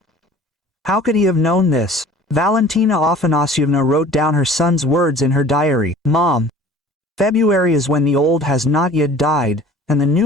How could he have known this? Valentina Afanasyevna wrote down her son's words in her diary. "Mom, February is when the old has not yet died, and the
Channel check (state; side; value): normal; both; correlation 0.47